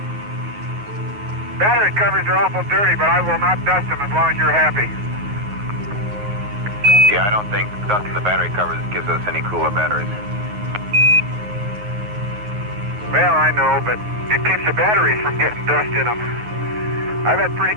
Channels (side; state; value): left; late; 9.5 ms